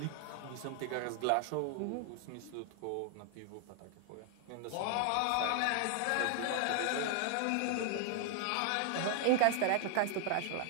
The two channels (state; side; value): different; both; correlation 0.00